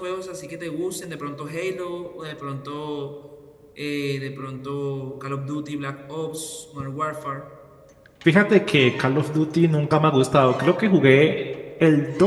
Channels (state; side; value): identical; both; correlation 1.00